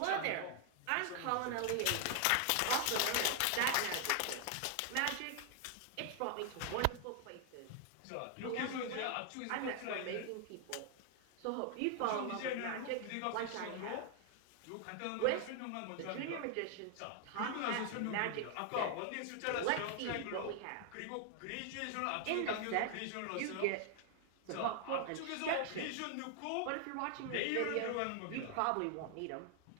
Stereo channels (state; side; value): different; both; correlation 0.00